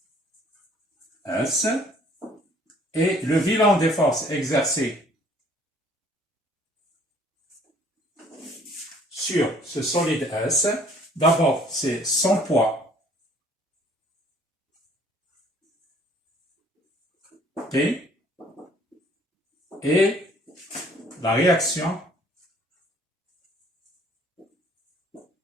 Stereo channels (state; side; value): normal; both; correlation 0.57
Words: S, et le bilan des forces exercées sur ce solide S, d'abord c'est son poids, P, et la réaction